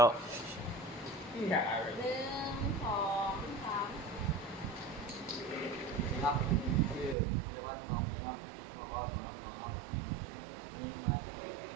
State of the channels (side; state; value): left; drops out; at 7.2 s